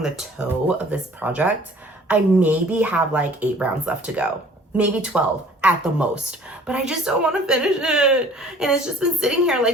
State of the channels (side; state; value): both; normal; correlation 0.52